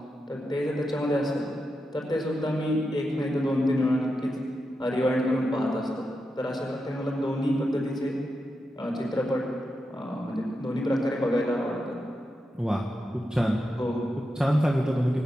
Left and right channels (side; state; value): both; normal; correlation 0.88